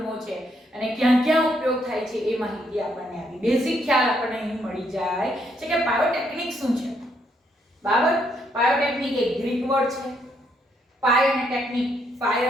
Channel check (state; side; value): normal; both; correlation 0.73